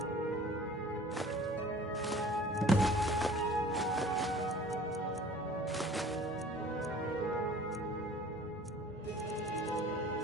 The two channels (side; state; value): both; normal; correlation 0.48